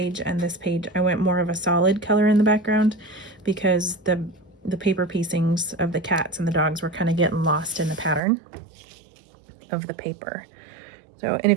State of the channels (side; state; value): left; drops out; at 8.2 s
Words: and this page, I went more of a solid color in the background, because the paper piecings of the cats and the dogs were kind of getting lost in the pattern of the paper. So, and